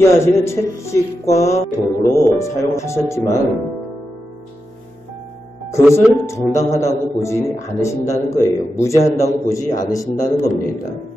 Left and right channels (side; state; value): both; normal; correlation 0.89